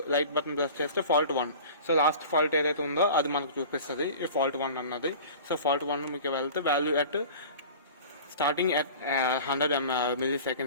లైట్ బటన్ ప్రెస్ చేస్తే ఫాల్ట్ 1. సో లాస్ట్ ఫాల్ట్ ఏదైతే ఉందో అది మనకు చూపిస్తుంది, ఈ ఫాల్ట్ 1 అన్నది. సో ఫాల్ట్ 1 మీకు వెళ్తే value at starting at 100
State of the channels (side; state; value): both; inverted; correlation -0.40